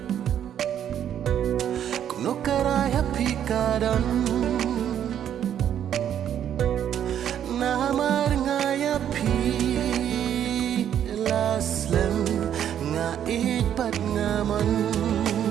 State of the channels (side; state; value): left; quieter; 9.8 dB